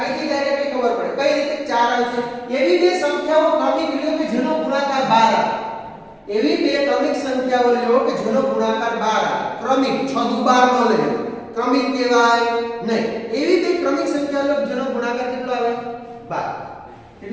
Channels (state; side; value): identical; both; correlation 1.00